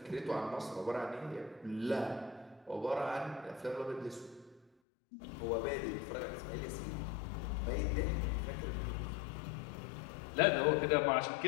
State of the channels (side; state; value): right; drops out; at 4.7 s